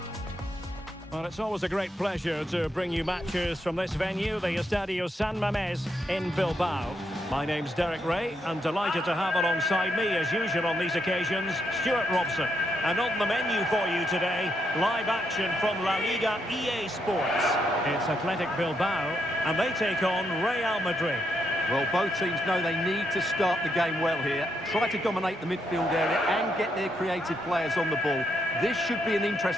Well, it's always a great pleasure to bring you matches from this venue, the Estadio San Mamés in Bilbao. My name's Derek Ray, and delighted to have alongside me, as usual on these occasions, Stuart Robson. And on the menu for you today, live action from La Liga EA Sports. It's Athletic Bilbao, and they take on Real Madrid. Well, both teams know they need to start the game well here. Try to dominate the midfield area and get their creative players on the ball. This should be an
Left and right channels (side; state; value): both; normal; correlation 0.79